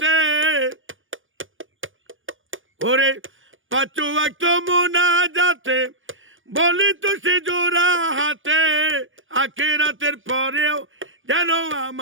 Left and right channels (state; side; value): late; left; 0.57 ms